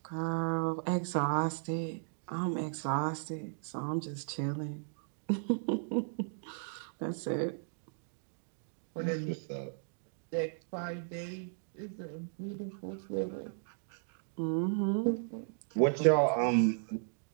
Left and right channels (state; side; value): silent; left; digital silence